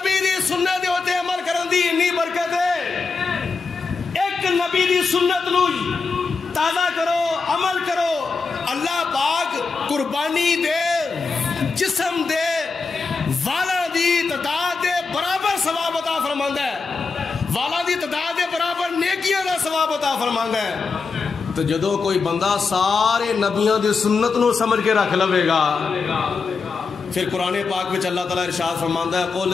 دی سنت ہوتے عمل کرن دی انی برکت ہے. ایک نبی دی سنت نو تازہ کرو, عمل کرو, اللہ پاک قربانی دے جسم دے والا دی تعداد دے برابر ثواب عطا فرماندا ہے. والاں دی تعداد دے برابر نیکیاں دا ثواب عطا فرماندا ہے۔ تو جدو کوئی بندہ سارے نبیوں دی سنت نو سمجھ کے رکھ لوے گا، پھر قرآن پاک میں اللہ تعالیٰ ارشاد فرماندا ہے قل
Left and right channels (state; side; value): quieter; right; 4.7 dB